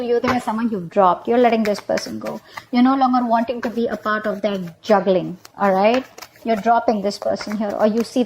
is someone you've dropped. You're letting this person go. You're no longer wanting to be a part of their juggling, all right? You're dropping this person here, or you see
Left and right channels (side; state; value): both; identical; correlation 1.00